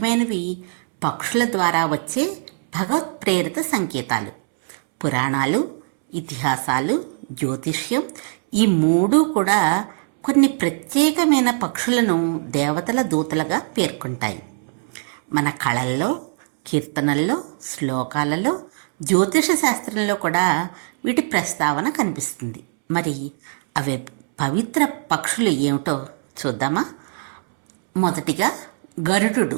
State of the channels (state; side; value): silent; left; 65 dB below the other